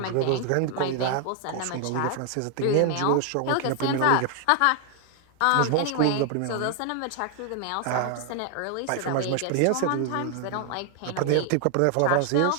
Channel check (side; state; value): both; different; correlation 0.00